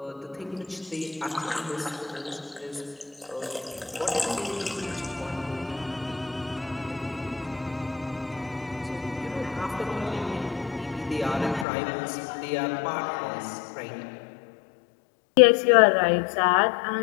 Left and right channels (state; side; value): drops out; right; at 11.7 s